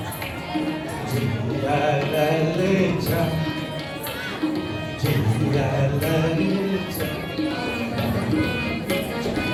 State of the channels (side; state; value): both; identical; correlation 1.00